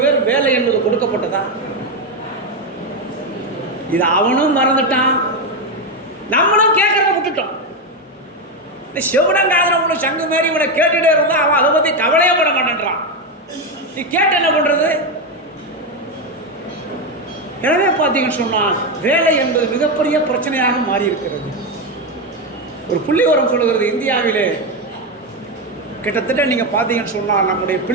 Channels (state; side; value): normal; both; correlation 0.09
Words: பேர் வேலை என்பது கொடுக்கப்பட்டதா? இது அவனும் மறந்துட்டான், நம்மளும் கேட்கறத விட்டுட்டோம். இந்த செவடங்காதன உன்னை சங்கு மாரி இவனை கேட்டுட்டே இருந்தா அவன் அதை பற்றி கவலையே பட மாட்டேன்றான். நீ கேட்டு என்ன பண்ணுறது? எனவே பார்த்தீங்கன்னு சொன்னால் வேலை என்பது மிகப்பெரிய பிரச்சனையாக மாறி இருக்கிறது. ஒரு புள்ளிவரம் சொல்லுகிறது, இந்தியாவிலே கிட்டத்தட்ட நீங்கள் பார்த்தீங்கன்னு சொன்னால் நம்முடைய